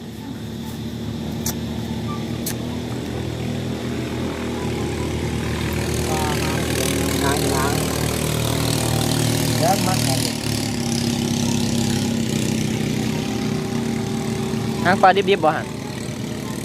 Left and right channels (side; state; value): both; identical; correlation 1.00